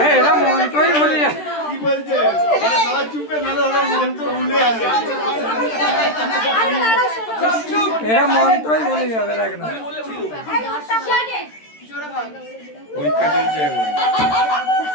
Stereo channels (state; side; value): late; right; 13 ms